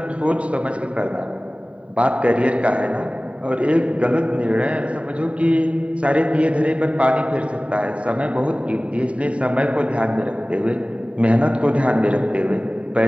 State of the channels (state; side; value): late; left; 0.063 ms